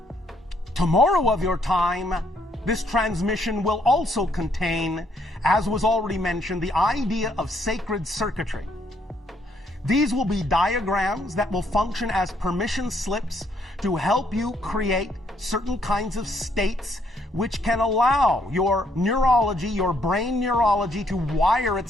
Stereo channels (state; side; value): normal; both; correlation 0.70